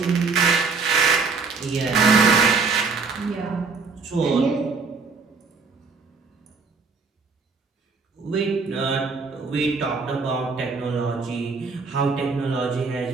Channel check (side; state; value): left; quieter; 4.5 dB